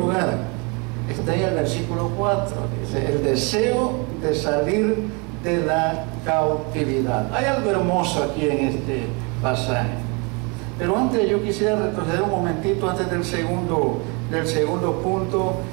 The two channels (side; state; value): left; quieter; 31.5 dB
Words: está ahí el versículo 4, dice: el deseo de salir de la cautividad. Hay algo hermoso aquí en este pasaje. Pero antes, yo quisiera retroceder un momentito antes del segundo punto.